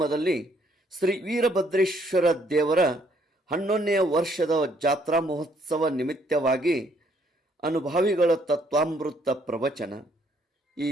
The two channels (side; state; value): both; normal; correlation 0.67